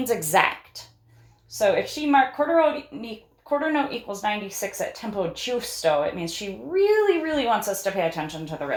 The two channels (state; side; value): identical; both; correlation 1.00